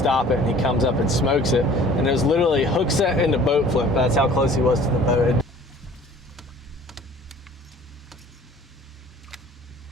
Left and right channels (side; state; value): both; normal; correlation 0.50